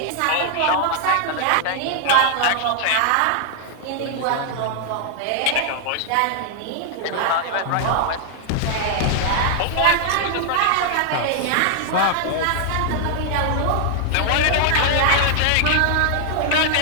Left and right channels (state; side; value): different; both; correlation 0.00